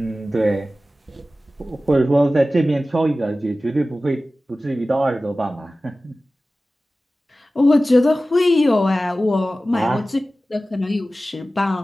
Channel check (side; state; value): both; normal; correlation 0.96